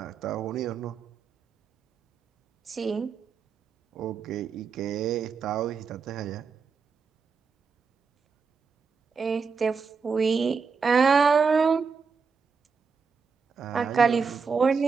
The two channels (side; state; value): left; quieter; 5.4 dB